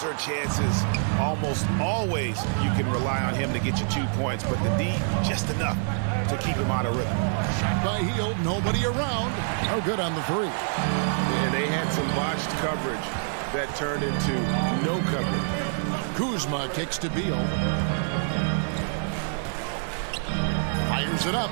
are chances almost always you can rely on him to get you 2 points, but the D, just enough to keep him out of rhythm. Shot by Hield, nobody around. No good on the three. And they had some botched coverage that turned into no coverage. Kuzma kicks to Beal. Fires it up.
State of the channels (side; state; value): left; silent; 61 dB below the other